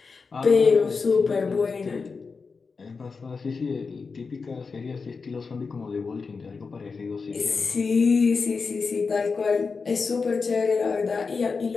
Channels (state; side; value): quieter; right; 4.8 dB